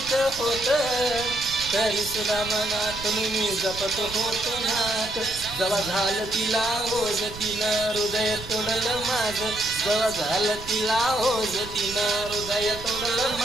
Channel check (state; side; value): noise; right; rumble, 14 dB below the sound